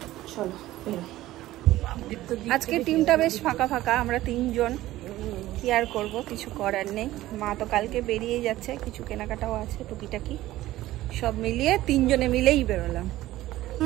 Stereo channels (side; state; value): left; quieter; 15.8 dB